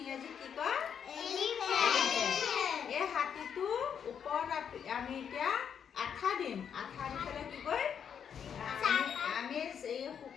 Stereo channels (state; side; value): quieter; right; 7.8 dB